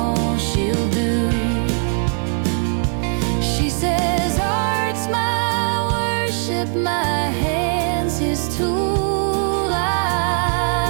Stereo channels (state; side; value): silent; left; 55 dB below the other